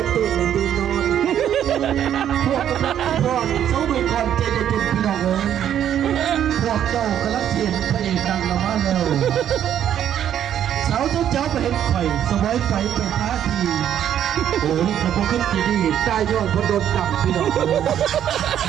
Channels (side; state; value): left; quieter; 10.1 dB